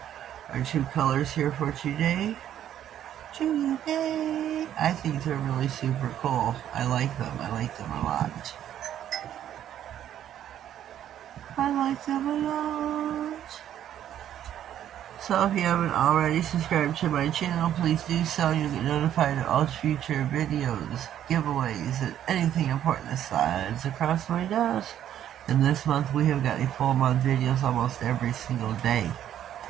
are two colors here for today. I think they're really super cool. I like them. I like them a lot. I like them a lot. So if you haven't already subscribed to my channel, please do so. You'll get notified of all future videos, giveaways, and anything important that slides across my desk. And this month we have got a full month videos almost every single day.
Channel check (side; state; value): left; quieter; 10.8 dB